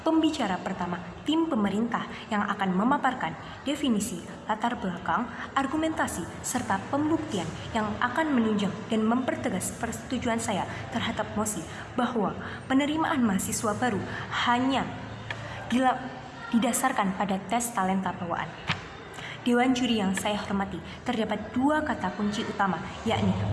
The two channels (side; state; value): both; identical; correlation 1.00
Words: pembicara pertama tim pemerintah yang akan memaparkan definisi, latar belakang, argumentasi, serta pembuktian yang akan menunjang dan mempertegas persetujuan saya terhadap mosi bahwa penerimaan mahasiswa baru hanya didasarkan pada tes talenta bawaan. Dewan juri yang saya hormati, terdapat dua kata kunci utama, yakni